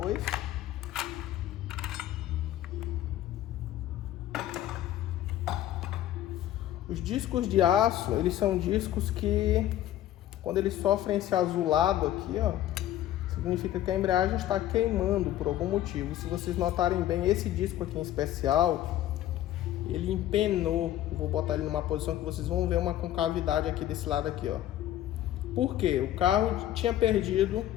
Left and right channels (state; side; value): quieter; right; 12.8 dB